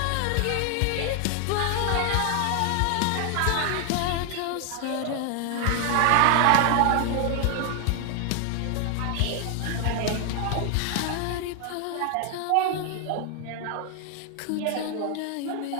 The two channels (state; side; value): different; both; correlation 0.00